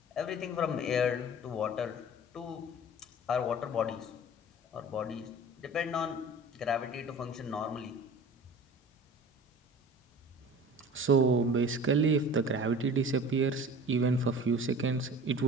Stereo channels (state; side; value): normal; both; correlation 0.42